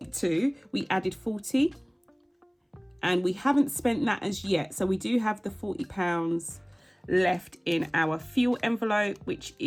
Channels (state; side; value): identical; both; correlation 1.00